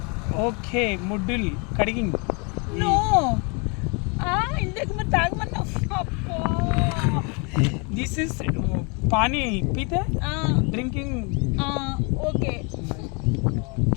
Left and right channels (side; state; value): right; quieter; 32.8 dB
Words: ఓకే, ముడ్డుల్ కడిగింగ్. నో ఇందాక మరి తాగమన్నా. దిస్ ఇస్ పానీ పీతే డ్రింకింగ్. ఓకే.